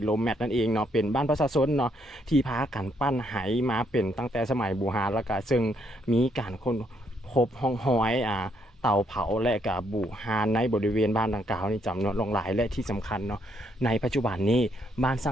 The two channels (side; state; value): both; normal; correlation 0.73